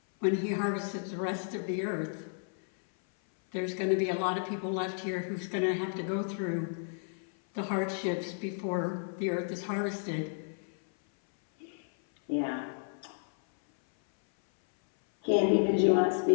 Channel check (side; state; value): right; silent; 57 dB below the other